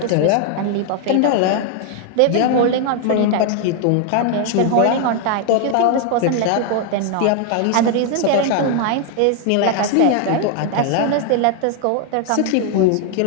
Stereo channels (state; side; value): different; both; correlation 0.00